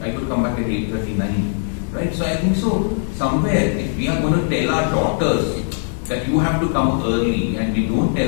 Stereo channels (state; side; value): silent; right; digital silence